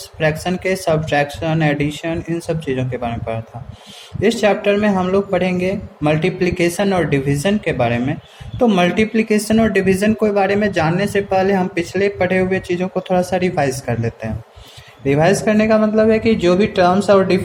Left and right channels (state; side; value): identical; both; correlation 1.00